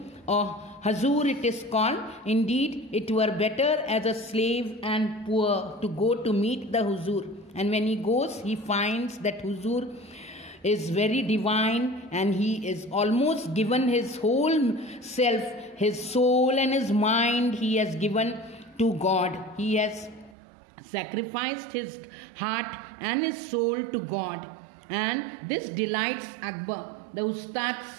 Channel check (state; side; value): drops out; left; at 20.4 s